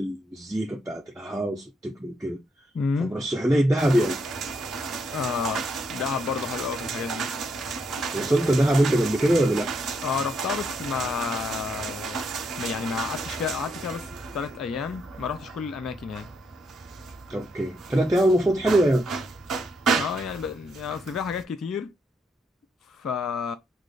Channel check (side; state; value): both; normal; correlation 0.77